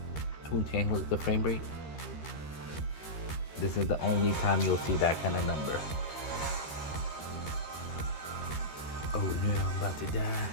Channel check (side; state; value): right; late; 13 ms